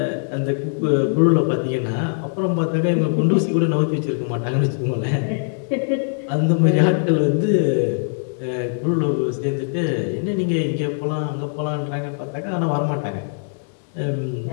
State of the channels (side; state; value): right; silent; 65 dB below the other